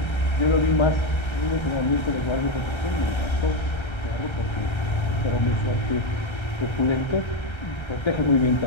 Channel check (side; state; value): right; late; 1.3 ms